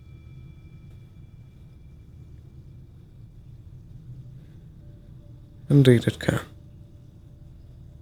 Indeed it can.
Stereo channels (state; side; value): identical; both; correlation 1.00